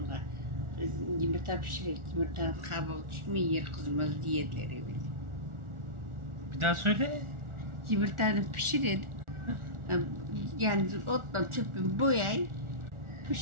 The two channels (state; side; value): late; left; 1.4 ms